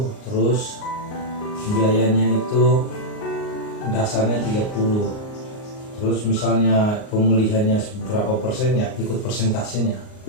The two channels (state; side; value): late; right; 38 ms